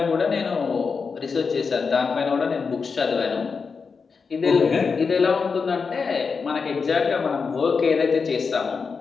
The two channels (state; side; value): quieter; right; 5.2 dB